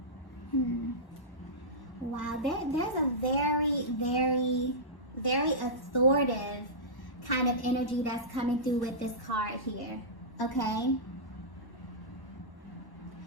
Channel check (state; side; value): late; right; 1.1 ms